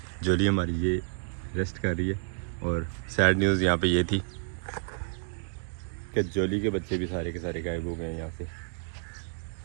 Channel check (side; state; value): left; silent; 58 dB below the other